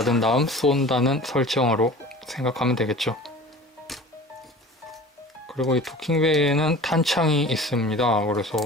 다음 쏜다는 설정으로 생각하면 되겠죠. 그리고 이 도킹베이에는 탄창이 있습니다. 그래서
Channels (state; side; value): normal; both; correlation 0.40